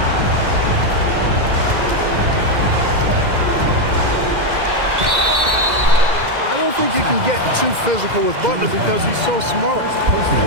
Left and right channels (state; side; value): late; left; 2.0 ms